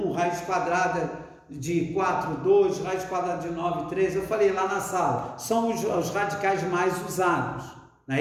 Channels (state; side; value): identical; both; correlation 1.00